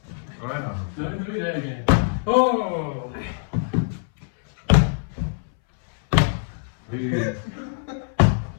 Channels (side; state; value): right; silent; 63 dB below the other